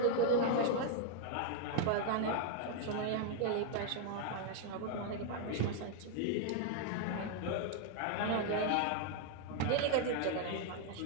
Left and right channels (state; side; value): different; both; correlation 0.00